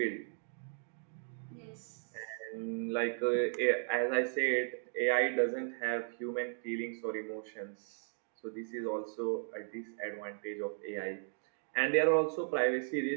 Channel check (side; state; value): left; silent; 54 dB below the other